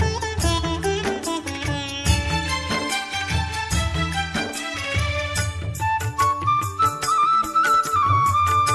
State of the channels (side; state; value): both; identical; correlation 1.00